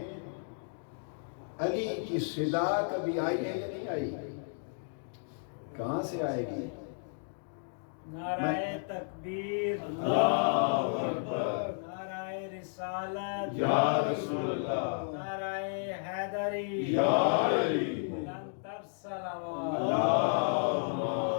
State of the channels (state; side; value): silent; right; digital silence